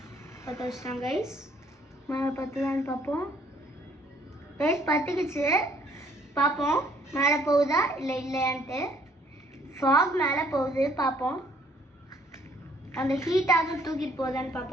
பற்ற வச்சுட்டான் கைஸ். மேலே பற்றுதான்னு பார்ப்போம் கைஸ். பற்றுக்குச்சு, பார்ப்போம் மேலே போகுதா இல்லை இல்லையான்ட்டு. ஃபாக் மேலே போகுது, பார்ப்போம். அந்த ஹீட்டாக தூக்கிட்டு போகுதான்னு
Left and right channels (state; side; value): normal; both; correlation 0.63